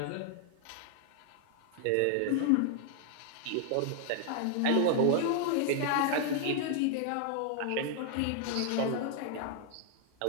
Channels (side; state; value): both; different; correlation 0.00